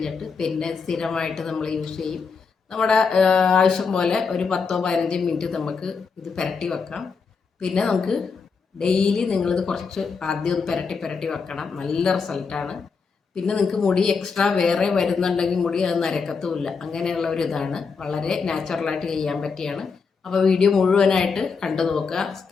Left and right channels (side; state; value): right; quieter; 5.2 dB